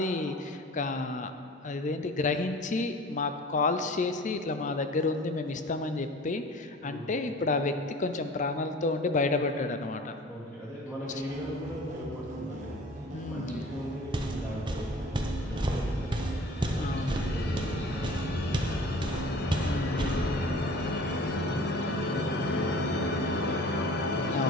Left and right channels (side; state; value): both; normal; correlation 0.44